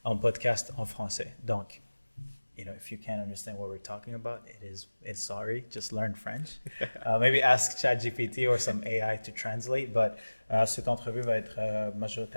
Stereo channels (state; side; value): inverted; both; correlation -1.00